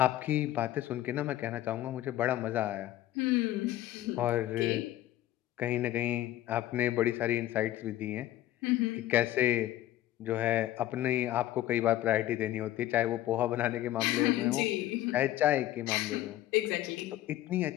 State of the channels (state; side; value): quieter; right; 14.1 dB